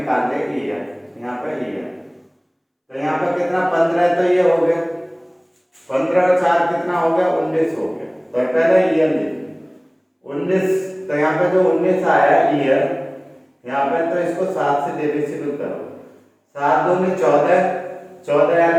ले, ईयर, यहाँ पर ईयर, तो यहाँ पर कितना 15, तो ये हो गया 15 और 4 कितना हो गया 19 हो गया। तो पहले ईयर लिखिए 19, तो यहाँ पे जो 19 आया ईयर, यहाँ पे तो इसको 7 से डिविजिबल करो, 7 दूनी 14, 14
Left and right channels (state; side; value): identical; both; correlation 1.00